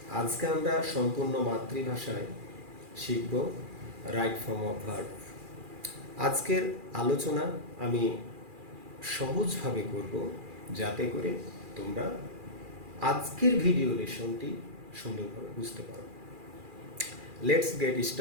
আজকে আমরা সম্পূর্ণ মাতৃভাষায় শিখব রাইট ফর্ম অফ ভার্ব। আজকের আলোচনা আমি সহজভাবে করব যাতে করে তোমরা আজকের ভিডিও লেসনটি সুন্দরভাবে বুঝতে পারো। Let's get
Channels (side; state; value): left; late; 2.4 ms